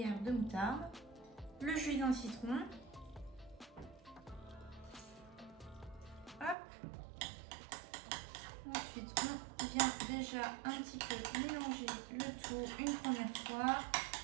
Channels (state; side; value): drops out; left; at 6.6 s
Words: de moutarde, le jus d'un citron. Hop. Ensuite, on vient déjà un petit peu mélanger le tout une première fois.